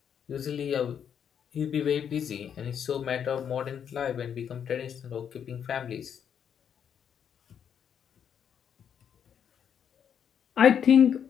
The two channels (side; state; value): right; quieter; 8.2 dB